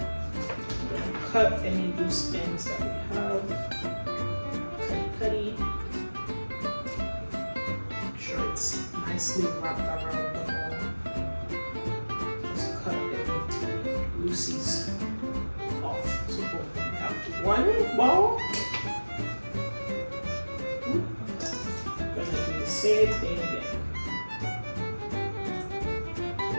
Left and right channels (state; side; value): inverted; both; correlation -1.00